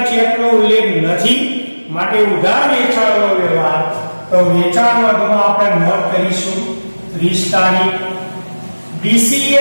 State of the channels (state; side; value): inverted; both; correlation -1.00